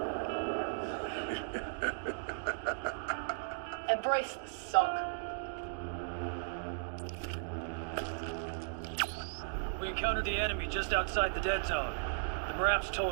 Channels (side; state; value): left; silent; digital silence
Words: Embrace the suck. We encountered the enemy just outside the dead zone. The Marap's